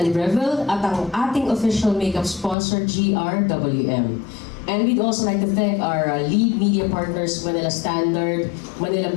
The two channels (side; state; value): right; drops out; at 2.6 s